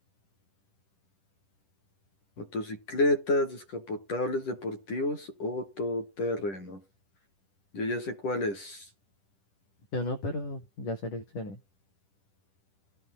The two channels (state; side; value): late; right; 10 ms